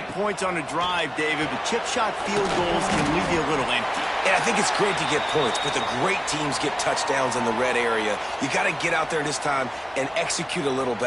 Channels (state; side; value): identical; both; correlation 1.00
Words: points on a drive, David, but chip shot field goals can leave you a little empty. And I think it's great to get points, but the great teams get touchdowns in the red area. You got to get out there this time and execute a little